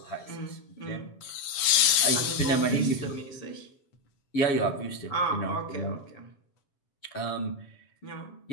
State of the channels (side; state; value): right; late; 8.0 ms